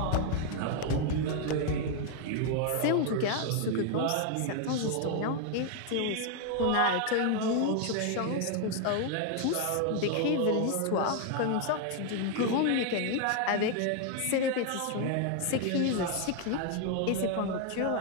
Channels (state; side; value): different; both; correlation 0.00